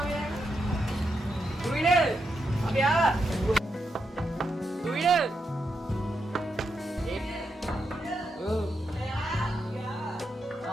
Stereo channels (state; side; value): normal; both; correlation 0.84